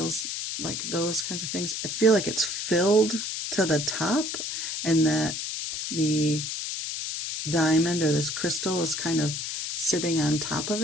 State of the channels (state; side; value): noise; left; hiss, 4 dB below the sound